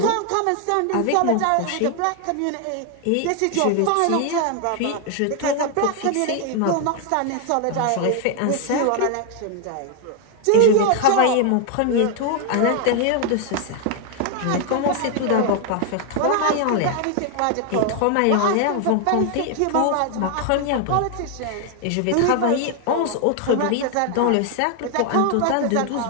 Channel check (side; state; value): both; different; correlation 0.00